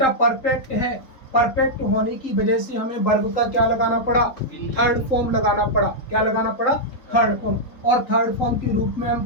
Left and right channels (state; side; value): late; right; 3.8 ms